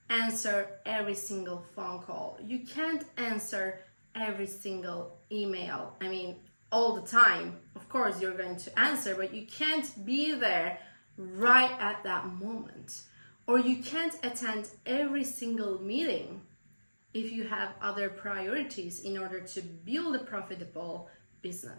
answer every single phone call. You can't answer every single email. I mean, all the time. Of course, you're going to answer, but you can't be there right at that moment. Or you can't attend every single meeting if you have other priorities in order to build a profitable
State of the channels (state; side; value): inverted; both; correlation -1.00